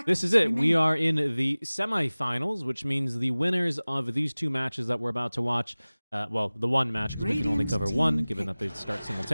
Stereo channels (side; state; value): both; inverted; correlation -0.99